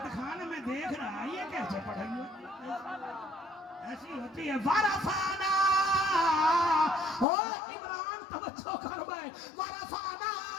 میں دیکھ رہا یہ کیسے پڑھائی ایسی ہوتی ہے ورفانا عمران توجہ کر بھائی ورفانا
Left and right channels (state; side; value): drops out; right; at 7.2 s